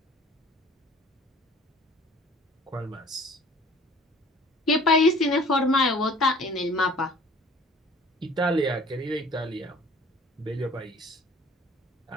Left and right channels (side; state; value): both; normal; correlation 0.50